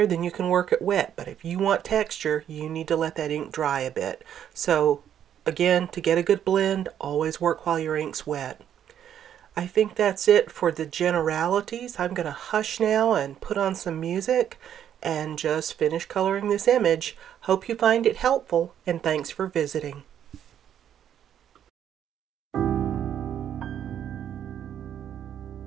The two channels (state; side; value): quieter; left; 9.8 dB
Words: then you can work it wet, but if you want texture, you need to let that ink dry a bit. So again, to get a good blend, always work while your ink's wet. I think that's it for the generalities. I'm going to hush now and put on some music and just finish coloring this image. Hope you find it helpful, and thanks for visiting.